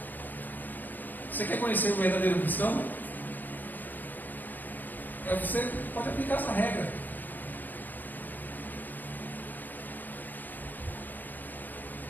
Você quer conhecer o verdadeiro cristão? Você pode aplicar essa regra.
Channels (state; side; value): late; right; 0.089 ms